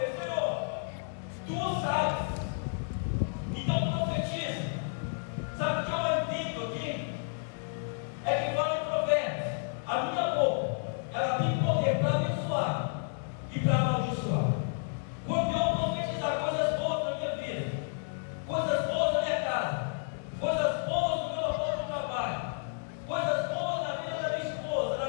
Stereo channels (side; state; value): right; silent; digital silence